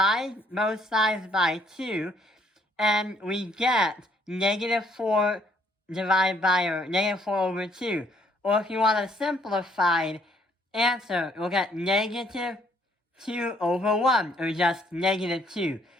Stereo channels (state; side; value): normal; both; correlation 0.66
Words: both sides by 2, and we get negative 4 divided by, or negative 4 over 2. Or if you want a simplified answer, we'll get negative 2 over 1, or just negative 2.